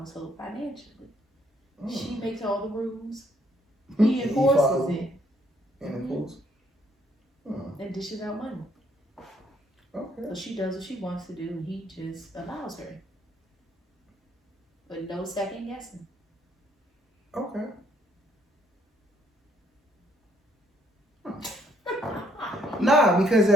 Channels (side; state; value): both; normal; correlation 0.68